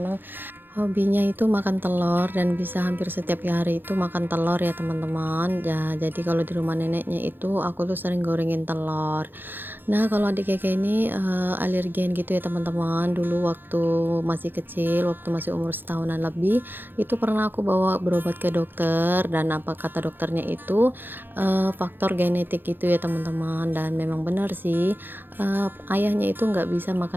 hobinya itu makan telur dan bisa hampir setiap hari itu makan telur ya teman-teman ya. Jadi kalau di rumah neneknya itu aku tuh sering gorengin telur. Nah, kalau adik Keke ini alergen gitu ya teman-teman. Dulu waktu masih kecil, waktu masih umur setahunan lebih, itu pernah aku bawa berobat ke dokter, dan apa kata dokternya itu faktor genetik gitu ya teman-teman. Dan memang benar sih, ayahnya itu nggak bisa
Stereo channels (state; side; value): late; left; 0.096 ms